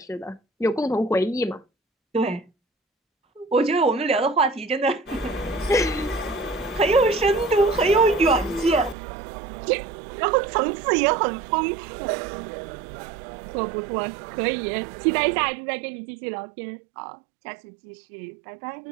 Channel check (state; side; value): drops out; left; at 9.0 s